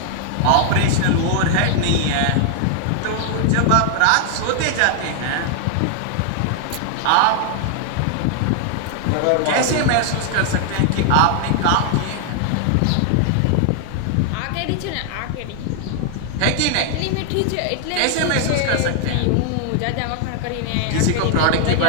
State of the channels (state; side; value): different; both; correlation 0.00